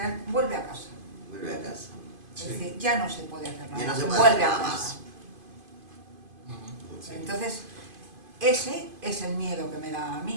vuelve a casa. Vuelve a casa. Es Sí. decir, ya no se puede hacer nada. Ya no se puede vuelve hacer a nada casa. más. Sí. Entonces, ese es el miedo que me da a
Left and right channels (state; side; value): late; left; 2.5 ms